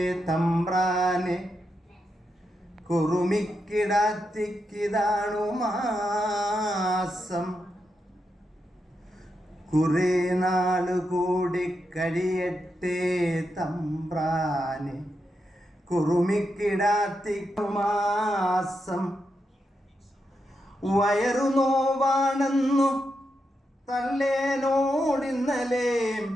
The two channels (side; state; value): both; normal; correlation 0.85